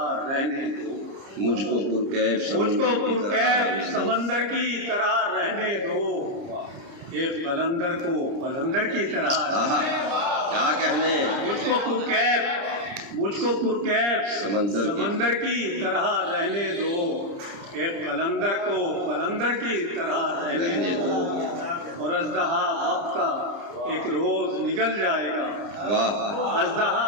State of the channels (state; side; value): late; left; 30 ms